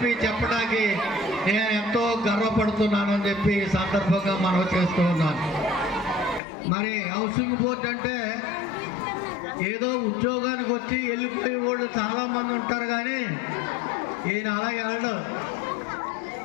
చెప్పడానికి నేను ఎంతో గర్వపడుతున్నానని చెప్పి ఈ సందర్భంగా మనం చేస్తూ ఉన్నాను. మరి హౌసింగ్ బోర్డు అంటే ఏదో ఉద్యోగానికి వచ్చి వెళ్ళిపోయే వాళ్ళు చాలామంది ఉంటారు, కానీ ఈయన అలాగే వెళ్ళడు.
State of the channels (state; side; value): drops out; right; at 6.4 s